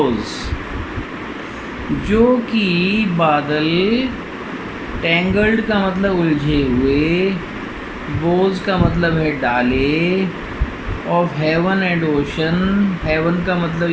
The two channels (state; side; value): identical; both; correlation 1.00